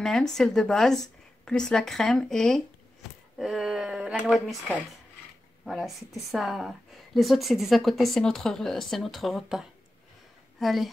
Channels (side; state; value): both; normal; correlation 0.92